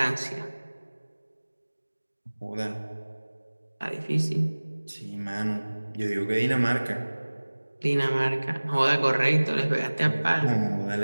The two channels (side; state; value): both; inverted; correlation -1.00